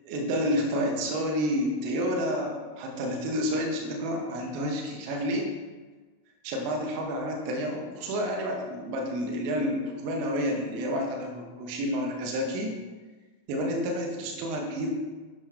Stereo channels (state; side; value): late; left; 33 ms